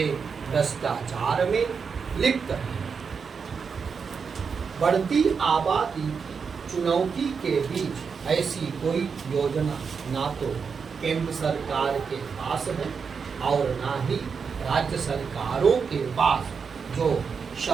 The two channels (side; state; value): left; quieter; 5.8 dB